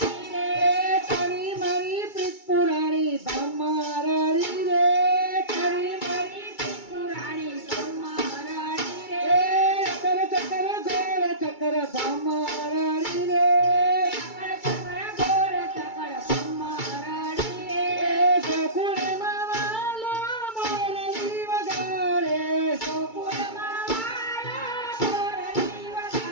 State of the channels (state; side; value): late; right; 2.3 ms